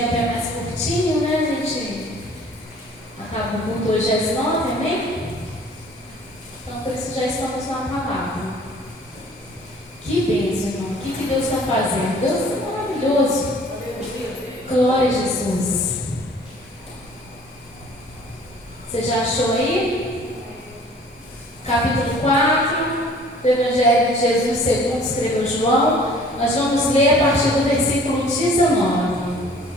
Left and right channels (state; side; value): normal; both; correlation 0.52